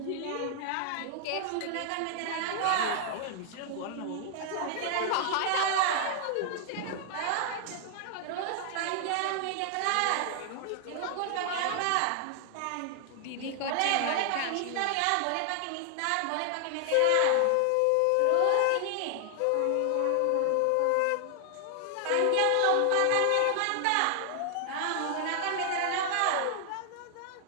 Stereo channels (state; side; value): different; both; correlation 0.00